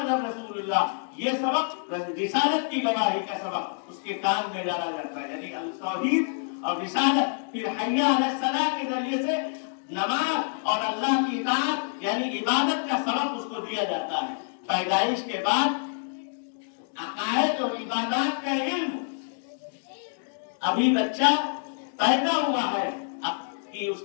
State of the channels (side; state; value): right; silent; digital silence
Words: رسول اللہ، یہ سبق رسالت کی گواہی کا سبق اس کے کان میں ڈالا جاتا ہے، یعنی توحید اور رسالت۔ پھر حی علی الصلاۃ کے ذریعے سے نماز اور اللہ کی اطاعت یعنی عبادت کا سبق اس کو دیا جاتا ہے۔ پیدائش کے بعد عقائد اور عبادات کا علم، ابھی بچہ پیدا ہوا ہے کہ اس